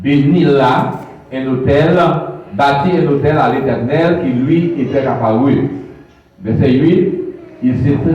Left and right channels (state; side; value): identical; both; correlation 1.00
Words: bénit là un hôtel, bâtit un hôtel à l'Éternel qui lui était apparu. Verset 8, il se